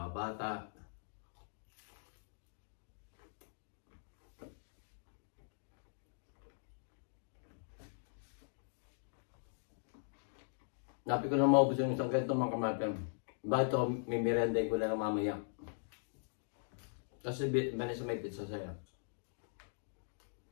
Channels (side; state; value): right; silent; digital silence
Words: bata. Napi ko na maubos yung isang ganito mga kamatan. Bakit ito, may merenday ko na lang mamaya. Kasi sa may pizza sa'yo.